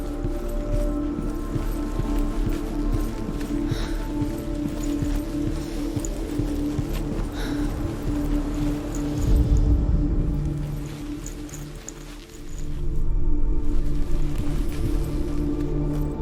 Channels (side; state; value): both; identical; correlation 1.00